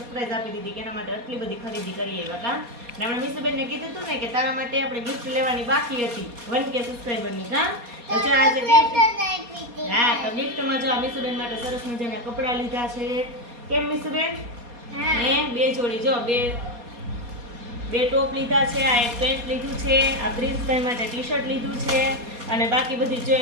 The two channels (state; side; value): late; left; 4.2 ms